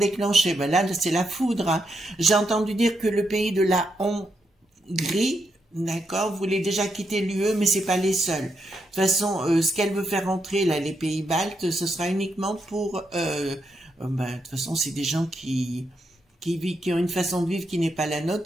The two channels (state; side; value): normal; both; correlation 0.81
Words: ben là c'est la foudre, hein. J'ai entendu dire que le pays de la Hongrie, d'accord, voulait déjà quitter l'UE, mais c'est pas les seuls. De toute façon, ce qu'elle veut faire entrer, là, les pays baltes, ce sera uniquement pour, ben, de toute façon, c'est des gens qui qui ont une façon de vivre qui n'est pas la